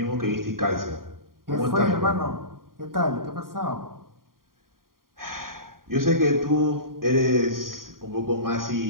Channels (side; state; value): left; late; 0.91 ms